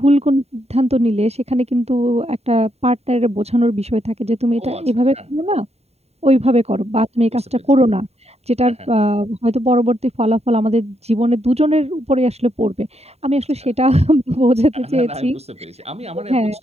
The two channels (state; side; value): late; left; 0.30 ms